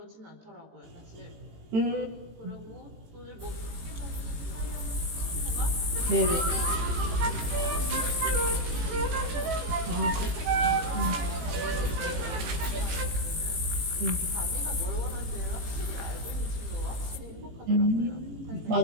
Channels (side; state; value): left; late; 18 ms